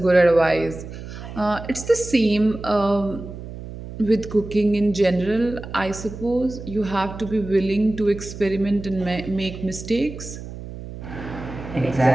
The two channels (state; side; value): noise; right; hum, 11 dB below the sound